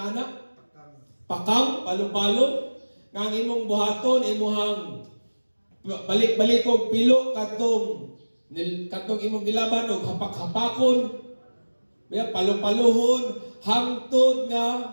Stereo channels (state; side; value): inverted; both; correlation -1.00